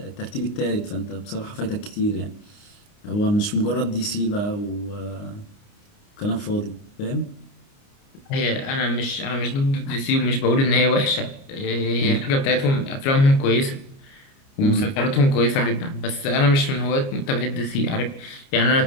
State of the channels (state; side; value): late; right; 29 ms